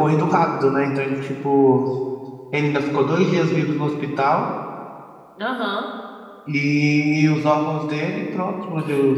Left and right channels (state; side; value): identical; both; correlation 1.00